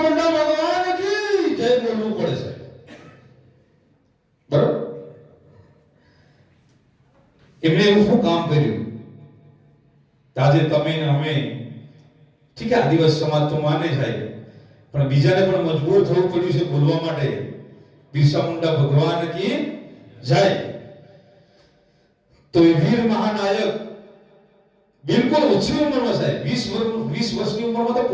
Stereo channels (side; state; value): both; identical; correlation 1.00